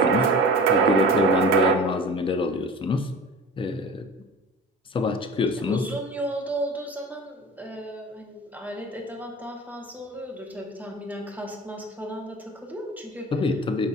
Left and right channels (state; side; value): normal; both; correlation 0.36